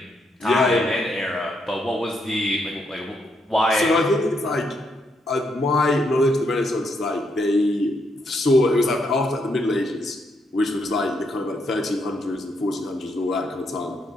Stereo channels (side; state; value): both; normal; correlation 0.77